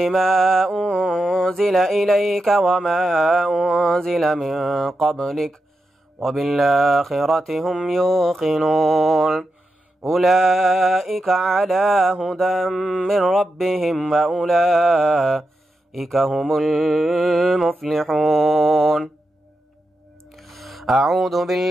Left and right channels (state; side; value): normal; both; correlation 0.88